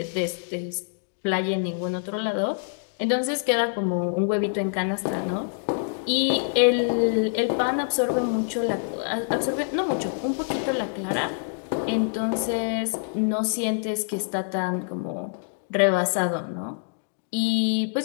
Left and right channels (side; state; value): right; silent; digital silence